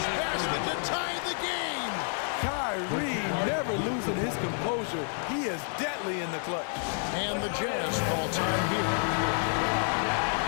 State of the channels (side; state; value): right; silent; 58 dB below the other